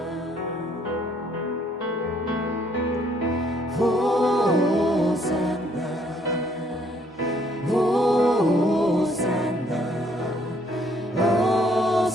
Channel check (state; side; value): normal; both; correlation 0.66